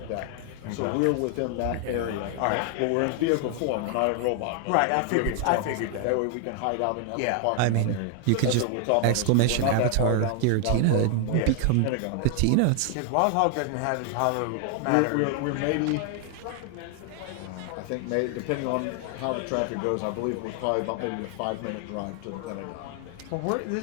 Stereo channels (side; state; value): both; different; correlation 0.00